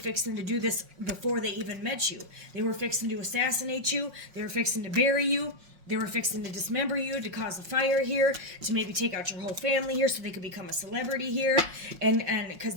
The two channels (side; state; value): left; late; 5.5 ms